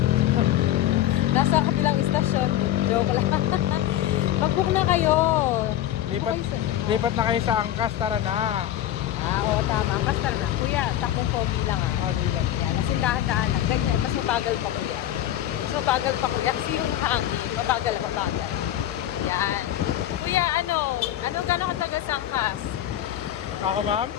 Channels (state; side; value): quieter; right; 12.6 dB